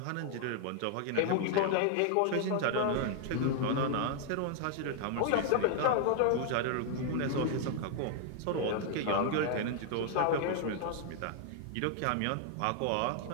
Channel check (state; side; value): different; both; correlation 0.00